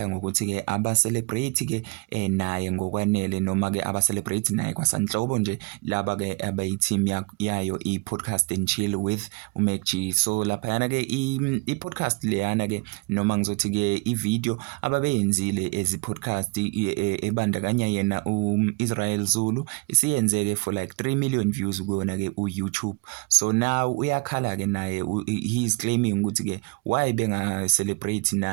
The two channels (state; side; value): quieter; left; 29.2 dB